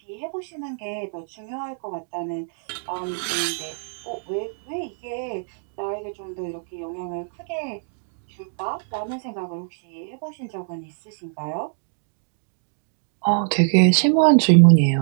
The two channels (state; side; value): silent; left; digital silence